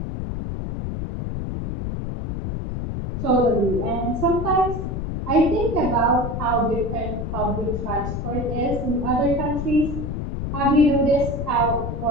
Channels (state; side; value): noise; left; rumble, 4 dB below the sound